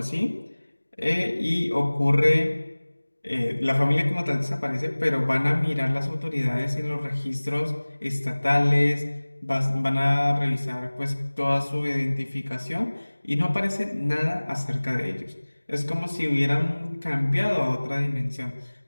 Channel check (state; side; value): inverted; both; correlation -1.00